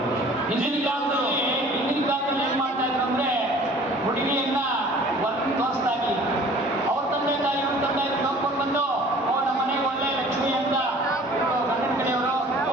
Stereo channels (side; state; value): both; normal; correlation 0.49